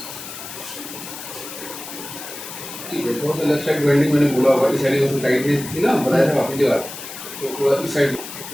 ठीक है थोड़ा सा लेफ्ट साइड बेंडिंग मैंने बोला होगा इस साइड में टाइट थी ना बताया था वापस जगह तो थोड़ा इस साइड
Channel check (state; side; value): noise; left; hiss, 11 dB below the sound